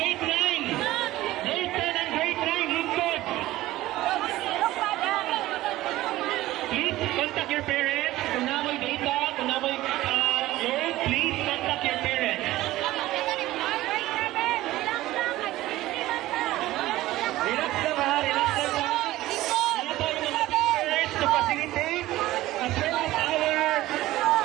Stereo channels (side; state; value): left; quieter; 16.5 dB